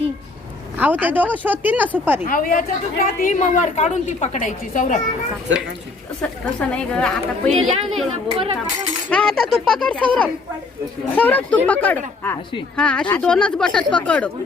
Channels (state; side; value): quieter; right; 3.8 dB